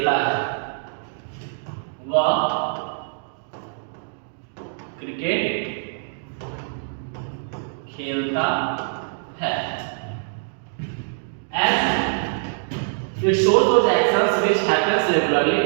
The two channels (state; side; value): silent; left; digital silence